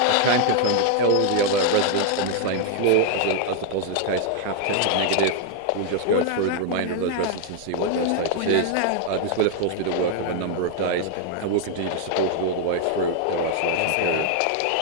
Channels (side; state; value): both; different; correlation 0.00